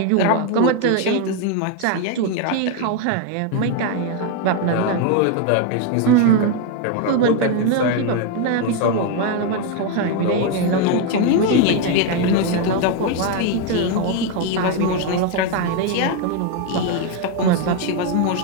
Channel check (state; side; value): different; both; correlation 0.01